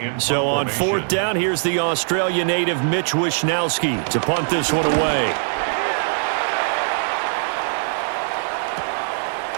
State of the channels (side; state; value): left; silent; digital silence